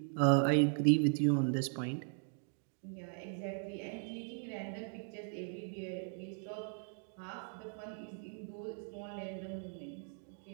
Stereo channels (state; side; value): silent; left; 52 dB below the other